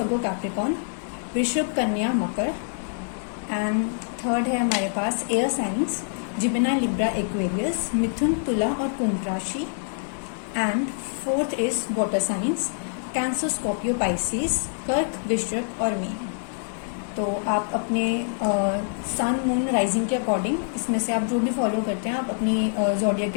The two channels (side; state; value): right; silent; digital silence